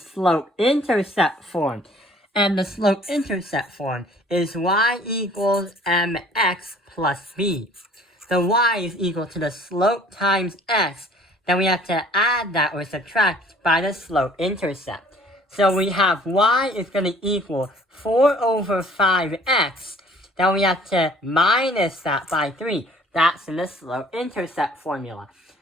form. And the slope-intercept form is y equals mx plus b. The y is equal to the slope times x. Then we have to add that or subtract by the slope-intercept. So we have y is going to equal 4 over 5x. Then we have to minus that by 3. That's in the slope-intercept formula.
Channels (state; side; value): normal; both; correlation 0.54